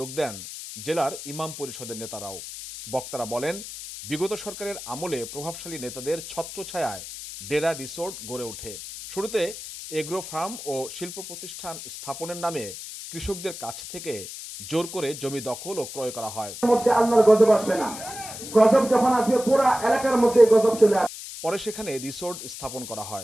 দেন জেলার ইমাম পরিষদের নেতারাও। বক্তারা বলেন, বিগত সরকারের আমলে প্রভাবশালী নেতাদের ছত্রছায়ায় ডেরা রিসোর্ট গড়ে ওঠে। শুরুতে এগ্রো ফার্ম ও শিল্প প্রতিষ্ঠান স্থাপনের নামে কৃষকদের কাছ থেকে জোর করে জমি দখল ও ক্রয় করা হয়। আল্লাহর গজব আসবে না, গজব যখন আসবে পুরো এলাকার মধ্যে গজব চলে আসবে। পরে সেখানে রিসোর্ট স্থাপন করা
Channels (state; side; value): noise; left; hiss, 10 dB below the sound